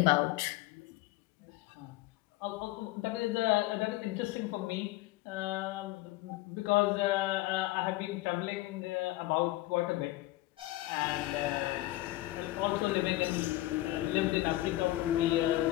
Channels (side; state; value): right; quieter; 17.6 dB